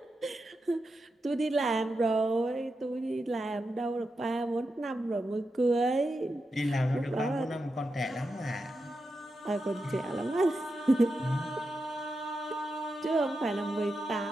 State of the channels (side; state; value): both; normal; correlation 0.88